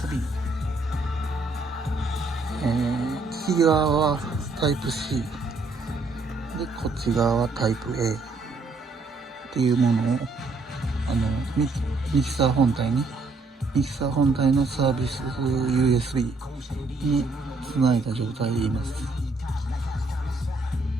右側はタイプ C で、こっち側はタイプ A っていうものをミキサー本体のサービス USB につないだ状態でいます。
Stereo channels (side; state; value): left; quieter; 3.5 dB